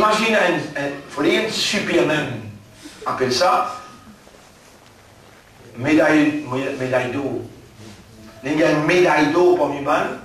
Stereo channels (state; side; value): identical; both; correlation 1.00